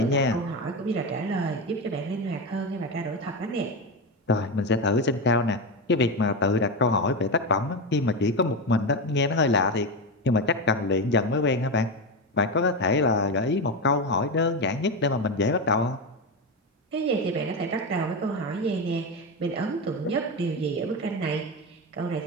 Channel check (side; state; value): both; normal; correlation 0.15